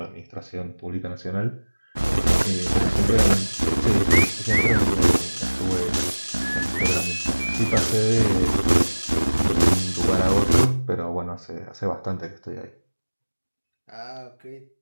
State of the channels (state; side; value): inverted; both; correlation -1.00